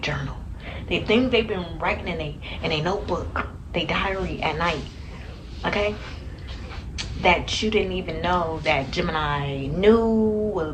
The things they've been writing in a notebook, their diary at night. Okay? That you didn't even know that Gemini knew,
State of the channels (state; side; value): identical; both; correlation 1.00